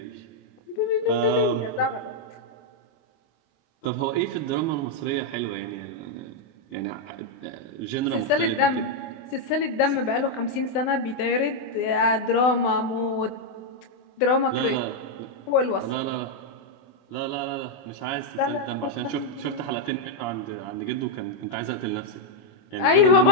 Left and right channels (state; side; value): late; right; 24 ms